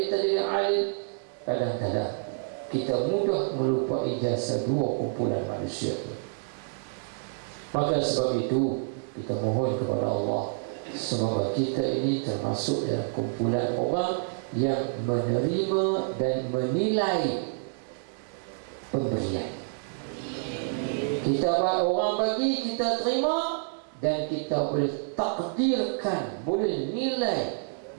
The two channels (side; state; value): left; silent; digital silence